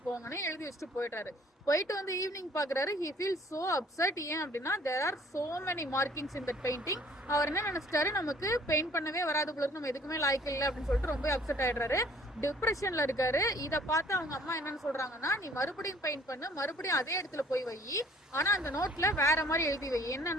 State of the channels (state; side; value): normal; both; correlation 0.56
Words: போங்கன்னு எழுதி வச்சுட்டு போயிட்டாரு. போயிட்டு வந்து ஈவினிங் பாக்குறாரு. He feel so upset. ஏன் அப்படின்னா there are so many markings in that painting. அவர் என்ன நினைச்சிட்டாரு, நமக்கு பெயிண்ட் பண்ணவே வராது போல இருக்கு, நம்ம எதுக்குமே லாய்க்கு இல்லை அப்படின்னு சொல்லிட்டு ரொம்ப அப்செட் ஆயிடுறாரு. டிப்ரெஷன்ல இருக்காரு. இதை பார்த்து அவங்க அம்மா என்னன்னு சொல்றாங்கன்னா, நீ மறுபடியும் பெயிண்ட் பண்ணு, மறுபடியும் அதே இடத்துல போய் வை, ஆனா அந்த நோட்ல வேற மாதிரி எழுதி வை.